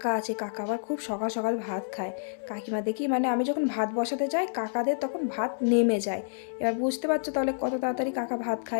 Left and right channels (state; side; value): silent; right; digital silence